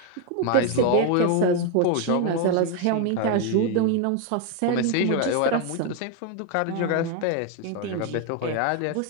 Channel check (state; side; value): different; both; correlation 0.01